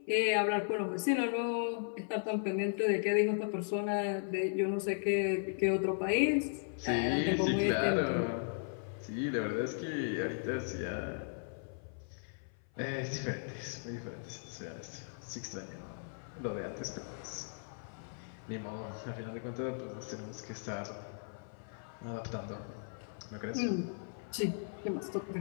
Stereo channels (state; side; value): silent; right; 53 dB below the other